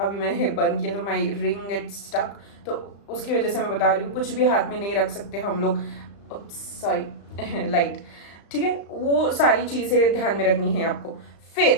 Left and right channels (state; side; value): late; right; 35 ms